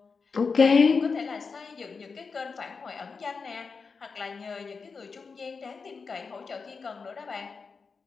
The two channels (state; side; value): quieter; right; 5.0 dB